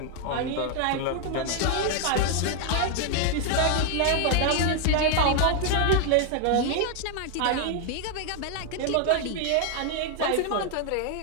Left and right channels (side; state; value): both; different; correlation 0.00